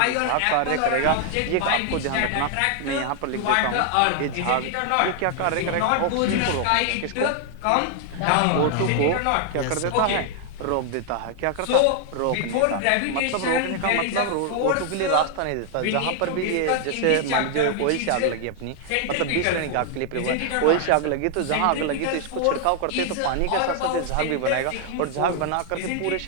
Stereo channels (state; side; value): different; both; correlation 0.00